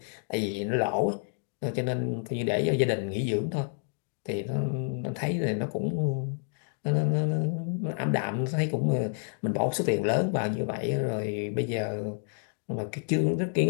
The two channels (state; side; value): silent; right; digital silence